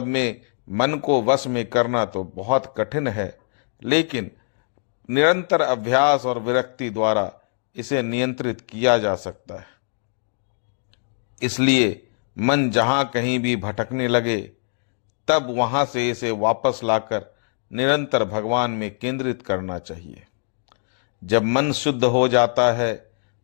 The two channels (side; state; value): right; silent; digital silence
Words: में मन को वश में करना तो बहुत कठिन है, लेकिन निरंतर अभ्यास और विरक्ति द्वारा इसे नियंत्रित किया जा सकता है। इसलिए मन जहां कहीं भी भटकने लगे तब वहां से इसे वापस लाकर निरंतर भगवान में केंद्रित करना चाहिए। जब मन शुद्ध हो जाता है